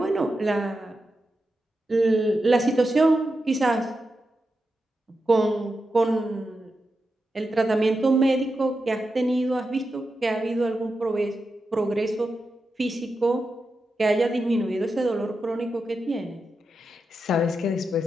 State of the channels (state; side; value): normal; both; correlation 0.89